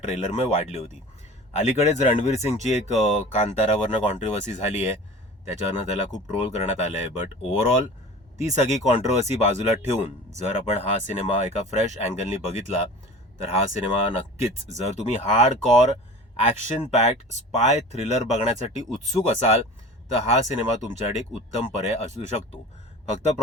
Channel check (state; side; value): normal; both; correlation 0.39